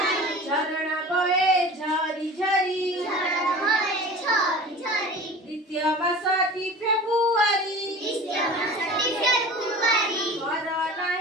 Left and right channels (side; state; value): both; normal; correlation 0.38